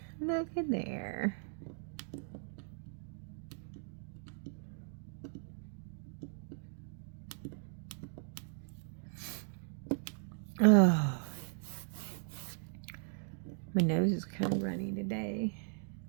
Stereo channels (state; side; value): silent; left; digital silence